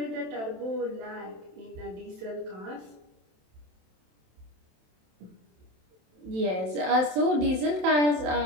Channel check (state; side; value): late; left; 27 ms